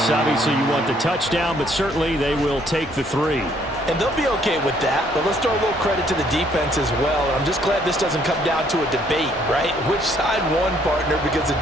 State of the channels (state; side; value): normal; both; correlation 0.65